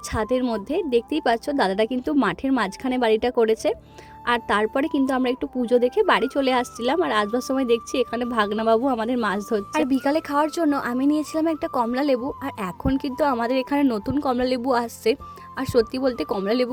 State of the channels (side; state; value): both; identical; correlation 1.00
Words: ছাদের মধ্যে। দেখতেই পাচ্ছ দাদাটা কিন্তু মাঠের মাঝখানে বাড়িটা করেছে। আর তারপরে কিন্তু আমরা একটু পুজো দেখে বাড়ি চলে আসছিলাম। আর আসবার সময় দেখছি এখানে ভাগনাবাবু আমাদের মাছ ধরছে। আর বিকালে খাওয়ার জন্য আমি নিয়েছিলাম একটা কমলা লেবু। আর এখন কিন্তু আমাদের এখানে নতুন কমলা লেবু আসছে। আর সত্যি বলতে কমলা